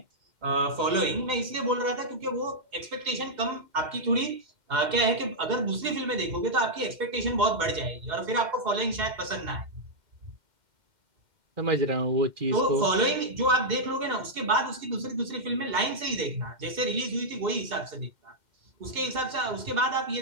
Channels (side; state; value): left; late; 2.1 ms